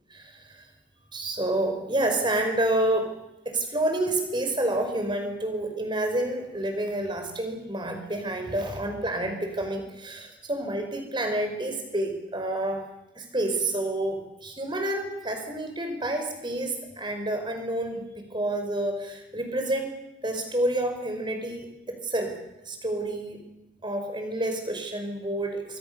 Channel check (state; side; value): normal; both; correlation 0.46